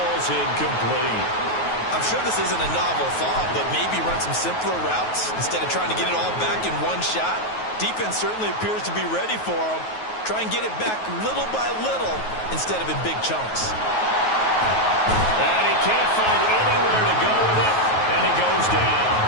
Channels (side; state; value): right; late; 9.4 ms